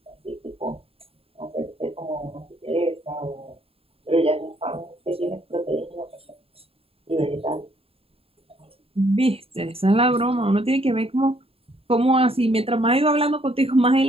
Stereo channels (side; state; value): left; late; 0.27 ms